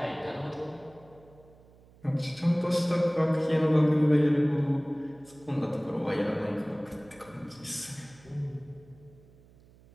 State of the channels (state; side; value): noise; right; hum, 26 dB below the sound